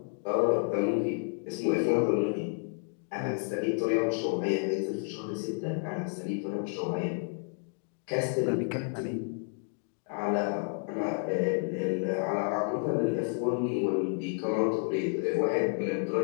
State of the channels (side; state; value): right; silent; 57 dB below the other